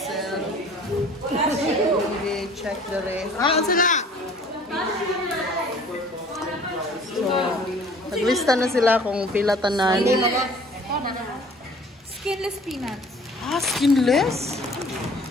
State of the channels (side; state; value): both; normal; correlation 0.50